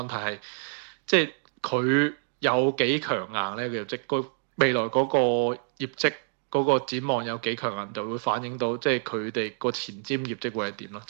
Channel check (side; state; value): left; silent; 60 dB below the other